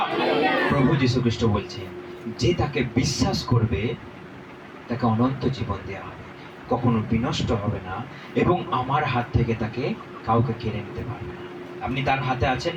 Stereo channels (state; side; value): identical; both; correlation 1.00